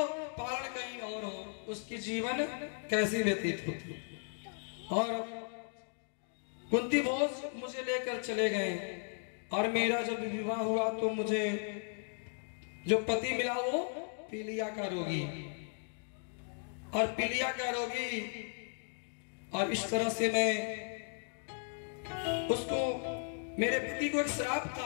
पालन कहीं और हो, उसकी जीवन कैसी व्यतीत होती। और कुंती भोज मुझे लेकर चले गए, और मेरा जब विवाह हुआ तो मुझे जो पति मिला वो पीलिया का रोगी, और पीलिया का रोगी, और इस तरह से मैं उसको, मेरे पति को एक श्राप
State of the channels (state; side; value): silent; right; 54 dB below the other